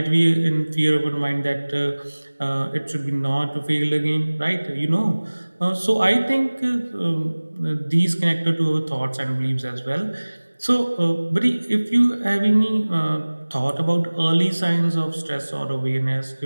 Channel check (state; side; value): inverted; both; correlation -1.00